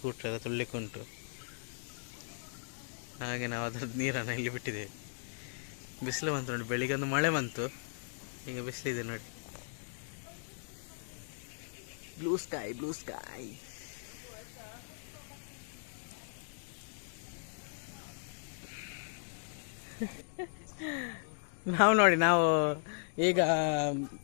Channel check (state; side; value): silent; right; digital silence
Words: ಎಲ್ಲ ತೊಳ್ಲಿಕ್ಕೆ ಉಂಟು. ಹಾಗೆ ನಾವು ಅದ್ರದ್ದು ನೀರನ್ನು ಇಲ್ಲಿ ಬಿಟ್ಟಿದ್ದೇವೆ. ಬಿಸಿಲು ಬಂತು ನೋಡಿ, ಬೆಳಿಗ್ಗೆ ಒಂದು ಮಳೆ ಬಂತು, ಈಗ ಬಿಸಿಲಿದೆ ನೋಡಿ. Blue sky blue sky. ನಾವು ಈಗ